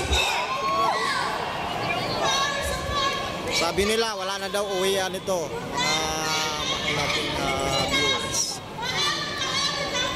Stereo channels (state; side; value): identical; both; correlation 1.00